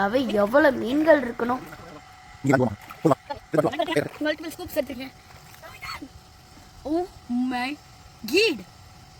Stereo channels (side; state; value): both; identical; correlation 1.00